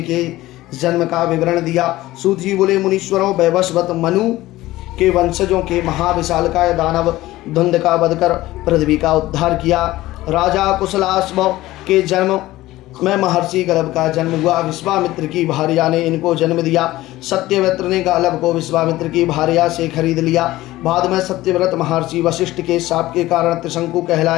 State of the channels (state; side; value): quieter; right; 17.0 dB